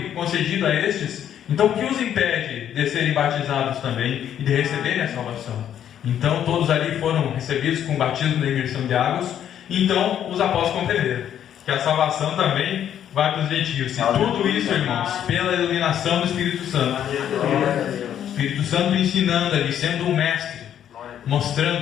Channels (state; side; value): quieter; right; 10.0 dB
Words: concedido a estes, então o que os impede de serem batizados também e de receberem a salvação? Então todos ali foram recebidos com o batismo da imersão de águas. Então os apóstolos compreenderam que a salvação também vai para os gentios. E tudo isso, irmãos, pela iluminação do Espírito Santo. O Espírito Santo ensinando ali, sendo um mestre,